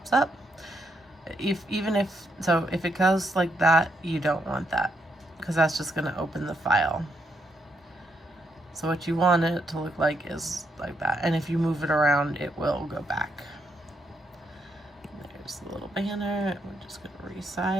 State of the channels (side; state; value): both; normal; correlation 0.78